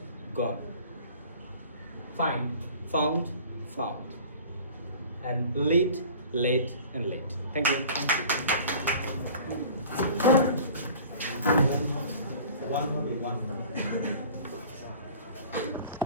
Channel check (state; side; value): inverted; both; correlation -0.44